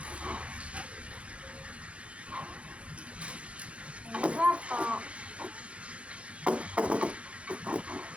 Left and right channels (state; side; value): late; left; 0.062 ms